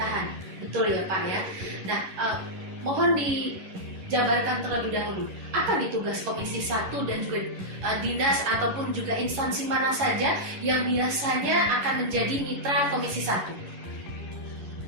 Betul ya Pak ya? Nah, mohon dijabarkan terlebih dahulu. Apa nih tugas Komisi 1 dan juga dinas ataupun juga instansi mana saja yang biasanya akan menjadi mitra Komisi 1?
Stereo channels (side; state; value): left; late; 11 ms